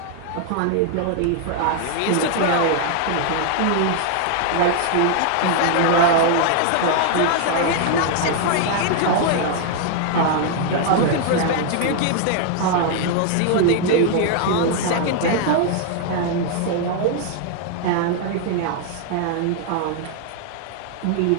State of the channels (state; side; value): different; both; correlation 0.00